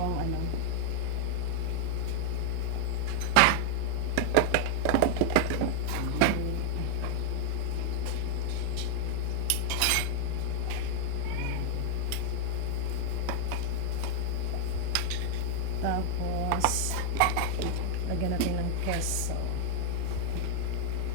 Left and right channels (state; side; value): different; both; correlation 0.00